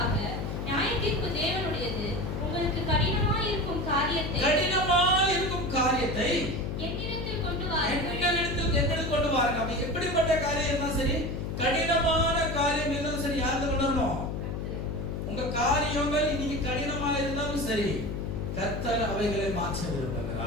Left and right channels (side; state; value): left; noise; hum, 4 dB below the sound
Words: நியாயத்தீர்ப்பு தேவனுடையது. உங்களுக்கு கடினமாய் இருக்கும் காரியத்தை என்னிடத்தில் கொண்டு வாருங்கள். என்னிடத்தில் கொண்டு வாருங்க. அப்ப எப்படிப்பட்ட காரியம் இருந்தாலும் சரி, கடினமான காரியம் இருந்தாலும் சரி, யாருக்கு கொண்டு வரணும்? உங்க காரியங்கள் இன்னைக்கு கடினமாக இருந்தாலும் சரி, கர்த்தர் அவைகளை மாற்ற